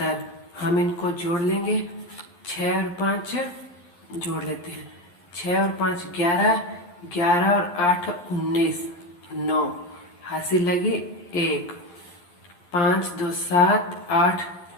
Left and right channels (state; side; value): late; right; 11 ms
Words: हम इनको जोड़ लेंगे, 6 और 5 जोड़ लेते हैं, 6 और 5 11, 11 और 8 19, 9, हासिल लगी 1, 5 2 7 8,